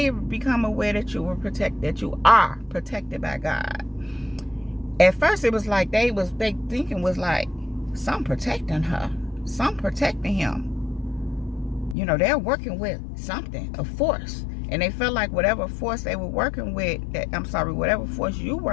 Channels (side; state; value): right; drops out; at 12.0 s